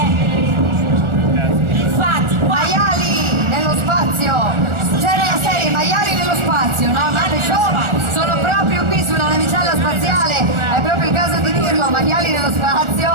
Infatti, qua Maiali nello spazio. C'era la serie Maiali nello spazio, no? Guarda, show. Sono proprio qui sulla navicella spaziale. È proprio il caso di dirlo, Maiali nello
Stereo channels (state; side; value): late; left; 1.4 ms